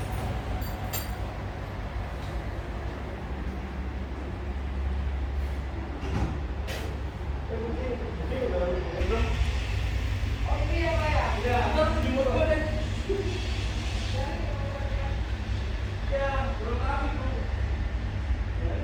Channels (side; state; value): both; identical; correlation 1.00